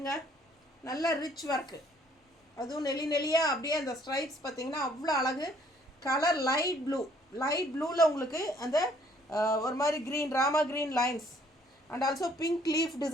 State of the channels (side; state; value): both; normal; correlation 0.62